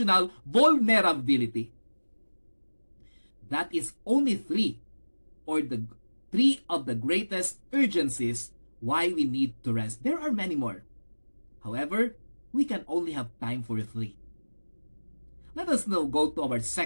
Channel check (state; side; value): inverted; both; correlation -1.00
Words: vulnerability. That is only three of the greatest urgencies why we need to rest. There are many more. However, we can only have time for three. Let us now go to our